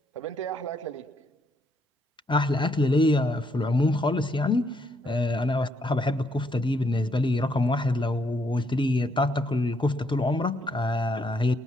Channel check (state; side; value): normal; both; correlation 0.73